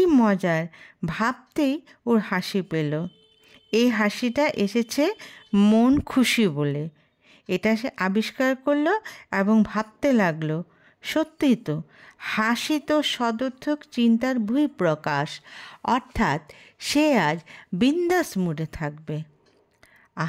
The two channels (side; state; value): both; identical; correlation 1.00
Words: মজার ভাবতেই ওর হাসি পেল। এই হাসিটা এসেছে মন খুশি বলে। এটা সে আবিষ্কার করলো এবং ভাবতে লাগলো, সত্যিই তো, হাসি তো সদর্থক চিন্তার বহিঃপ্রকাশ। অর্থাৎ সে আজ বিন্দাস মুডে থাকবে।